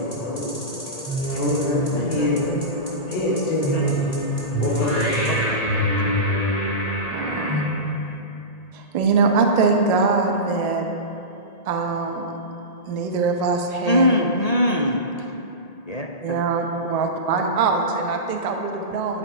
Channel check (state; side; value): late; right; 1.8 ms